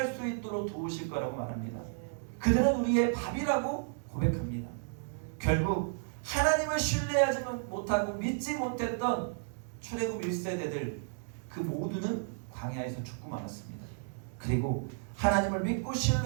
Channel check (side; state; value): left; silent; 56 dB below the other